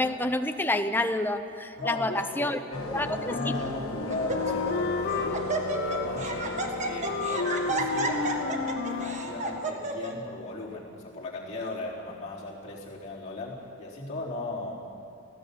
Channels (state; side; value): normal; both; correlation 0.19